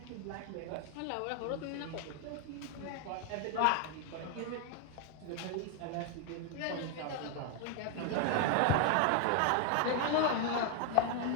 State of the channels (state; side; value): different; both; correlation 0.00